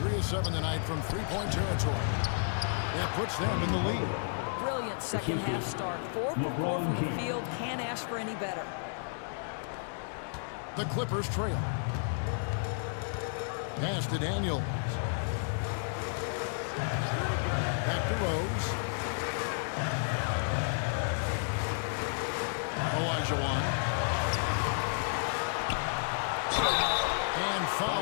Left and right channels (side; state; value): right; silent; digital silence